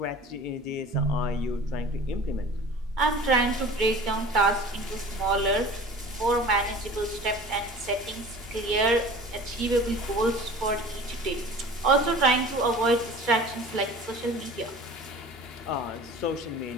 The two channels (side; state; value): both; normal; correlation 0.42